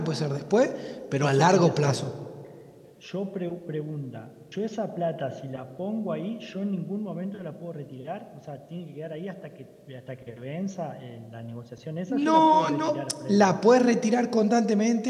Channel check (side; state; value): both; identical; correlation 1.00